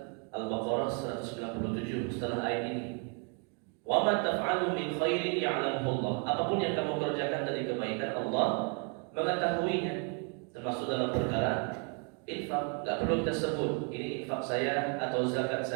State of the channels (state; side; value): quieter; left; 37.7 dB